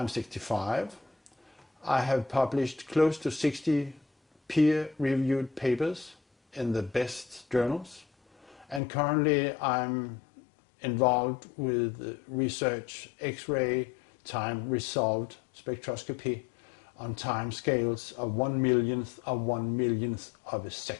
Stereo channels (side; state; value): right; drops out; at 8.8 s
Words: 65. I have published close to 60 peer-reviewed papers in the best journals, and currently I'm involved with research X-ray time resolved spectroscopy on time scales of 1/100000th of 1/100000th of a